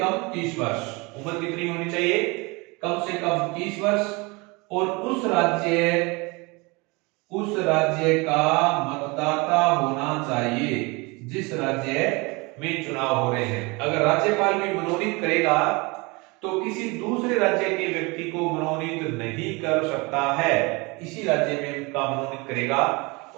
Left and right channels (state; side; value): quieter; left; 26.6 dB